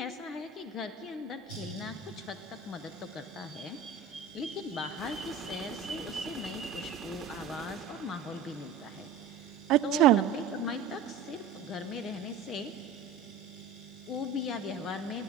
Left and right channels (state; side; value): quieter; left; 5.3 dB